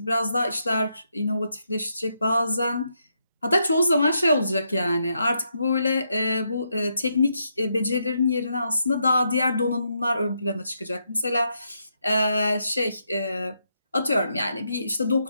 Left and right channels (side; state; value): both; inverted; correlation -0.80